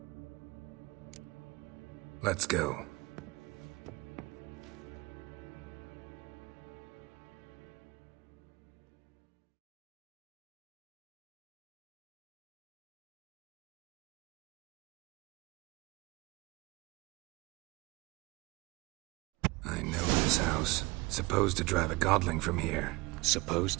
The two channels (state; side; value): quieter; left; 23.2 dB